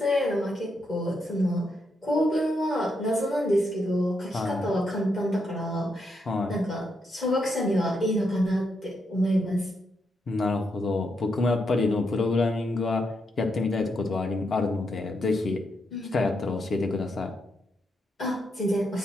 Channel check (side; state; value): both; normal; correlation 0.81